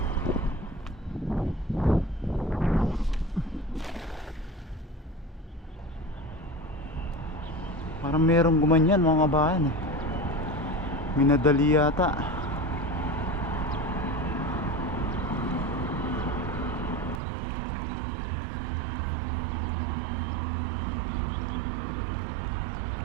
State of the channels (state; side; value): drops out; left; at 17.2 s